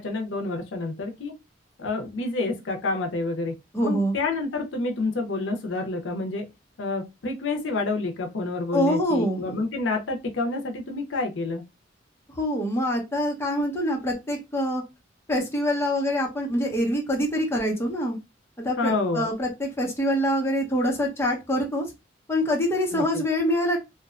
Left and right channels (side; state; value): both; normal; correlation 0.47